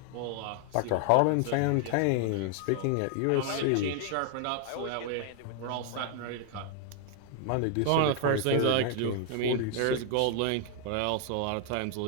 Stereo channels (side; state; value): both; different; correlation 0.00